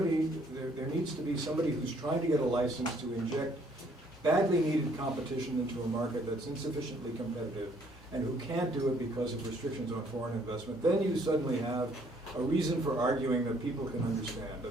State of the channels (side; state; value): both; normal; correlation 0.63